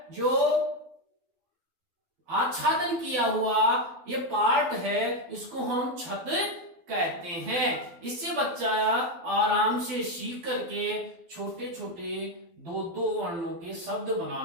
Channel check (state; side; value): late; left; 12 ms